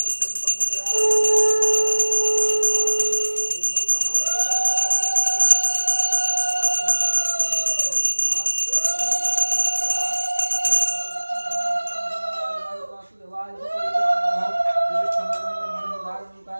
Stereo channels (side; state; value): both; inverted; correlation -1.00